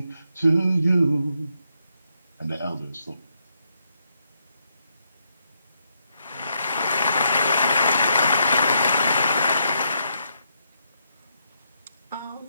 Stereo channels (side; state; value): both; inverted; correlation -0.78